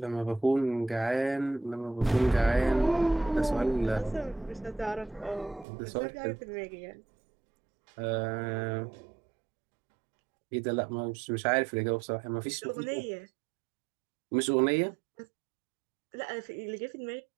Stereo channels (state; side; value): drops out; left; at 5.7 s